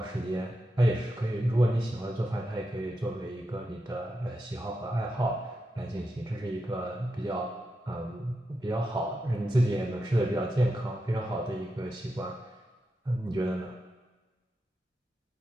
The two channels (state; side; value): normal; both; correlation 0.87